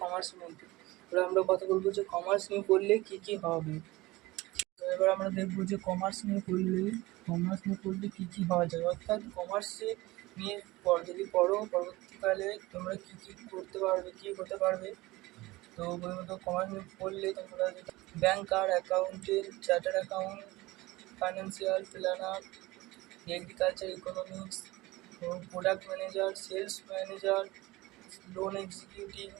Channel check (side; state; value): left; quieter; 20.2 dB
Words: কমার্সের মধ্যে। এবার আমরা কথা বলবো যে কমার্স নিয়ে পড়লে কী কী হবে। তো এবার আমরা দেখবো যে কমার্স নিয়ে পড়লে কী কী হওয়া যায়, অর্থাৎ কমার্সে নিয়ে যদি পড়ো পরবর্তীকালে তোমরা কী কী করতে পারবে, কী হতে পারবে। তো প্রথমত কমার্স নিয়ে পড়লে তোমরা banker, accountant, chartered account, financial planner, agriculture economics, product manager, sales manager, loan executive,